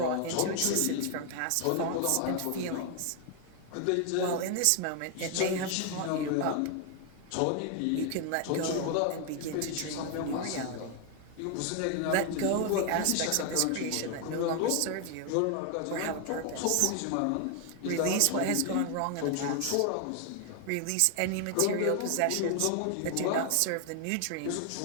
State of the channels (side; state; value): both; different; correlation 0.00